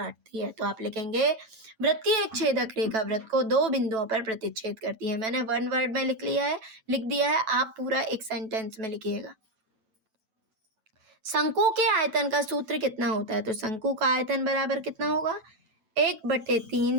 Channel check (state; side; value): late; left; 9.1 ms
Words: है। तो आप लिखेंगे वृत्त की एक छेदक रेखा वृत्त को 2 बिंदुओं पर प्रतिच्छेद करती है। मैंने 1 वर्ड में लिख दिया है, आप पूरा एक सेंटेंस में लिखिएगा। शंकु के आयतन का सूत्र कितना होता है? तो शंकु का आयतन बराबर कितना होगा?